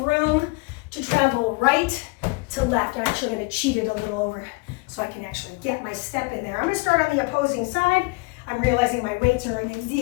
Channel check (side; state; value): right; quieter; 27.4 dB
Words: room to travel right to left. I'm actually gonna cheat it a little over so I can actually get my step in there. I'm gonna start on the opposing side. I'm realizing my weights are in the